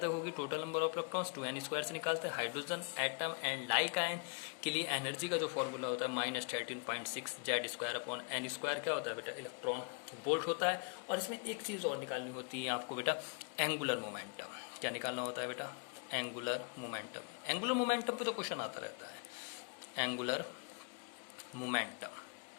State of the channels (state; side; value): quieter; right; 39.3 dB